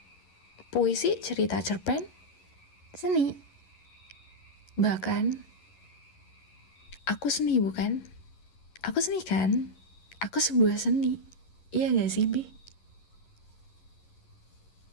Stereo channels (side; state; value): right; late; 11 ms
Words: puisi, cerita, cerpen seni. Bahkan aku seni bukan? Aku seni kan? Aku sebuah seni. Iya gak sih, Bi?